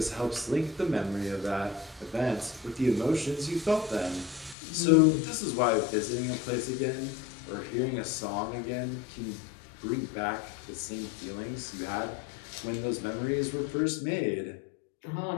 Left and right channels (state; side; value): drops out; right; at 4.5 s